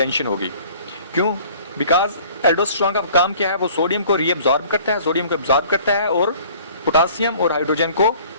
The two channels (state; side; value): inverted; both; correlation -0.52